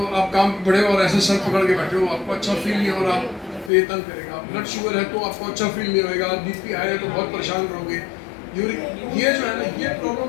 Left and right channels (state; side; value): drops out; right; at 3.7 s